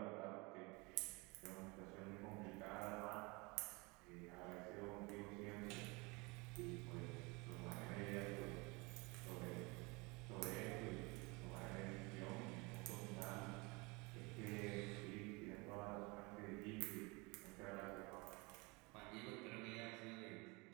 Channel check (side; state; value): left; quieter; 26.9 dB